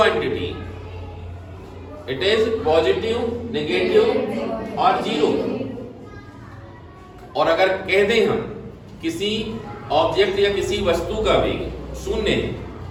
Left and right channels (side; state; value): both; identical; correlation 1.00